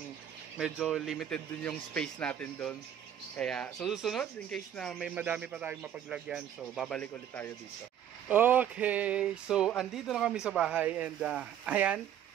medyo limited din yung space natin doon. Kaya so susunod in case na may madami pa tayong mapaglagyan, so babalik ulit tayo dito. Okay, so andito na kami sa bahay and ayan,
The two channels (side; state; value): left; quieter; 9.9 dB